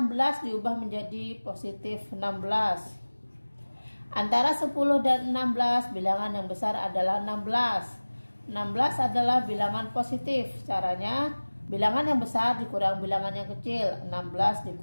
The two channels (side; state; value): both; inverted; correlation -1.00